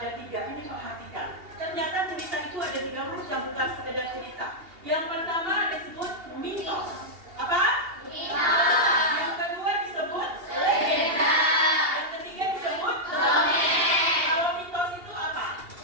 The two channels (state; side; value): late; left; 2.8 ms